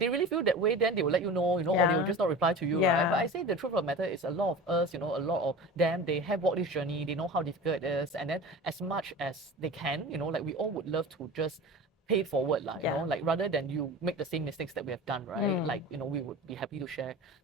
really feel that way, then they will let you know, or they will just not reply to you, right? But I say the truth of the matter is a lot of us, a lot of them, they have walked this journey, they know how difficult it is. And then as much as they can, like we all would love to just pay it forward, like rather than you make the same mistakes that we have done, right? Like, we would be happy to share.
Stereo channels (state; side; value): normal; both; correlation 0.34